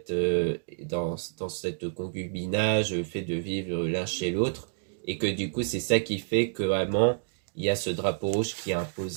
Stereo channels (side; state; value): left; silent; digital silence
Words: concubinage, le fait de vivre l'un chez l'autre, et que du coup c'est ça qui fait que vraiment il y a ce drapeau rouge qui est